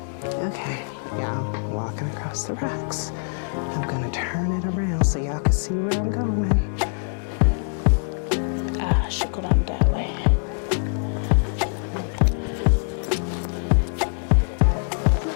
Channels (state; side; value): silent; right; digital silence